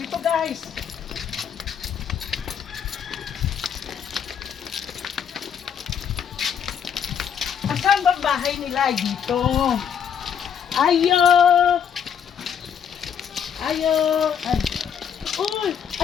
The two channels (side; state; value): right; quieter; 7.9 dB